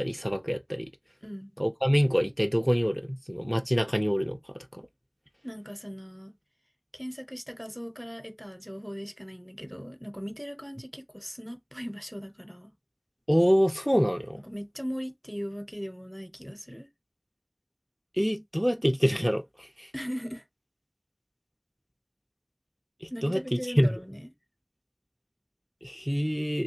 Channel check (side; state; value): both; identical; correlation 1.00